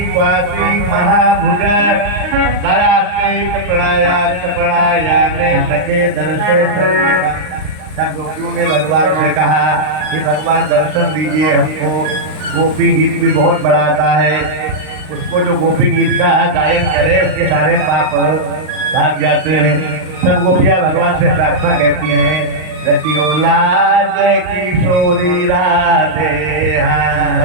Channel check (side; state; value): left; late; 39 ms